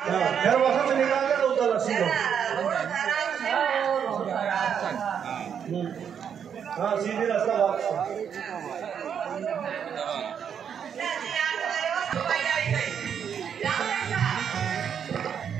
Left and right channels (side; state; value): left; quieter; 7.9 dB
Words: फिर वहाँ से निकाल के उधर सीधे हाँ सीधे रास्ता वापस